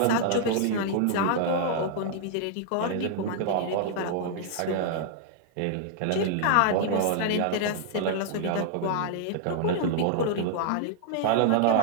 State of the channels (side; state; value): both; different; correlation -0.01